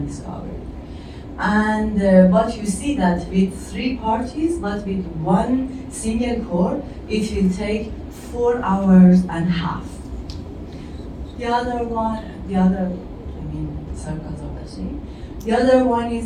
discover. And but you see that with 3 parties, but with 1 single core, it will take 4 hours and a half. The other circles of the tree. The other one is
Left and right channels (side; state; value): both; identical; correlation 1.00